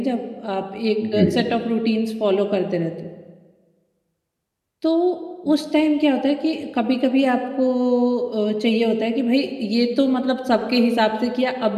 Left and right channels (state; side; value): identical; both; correlation 1.00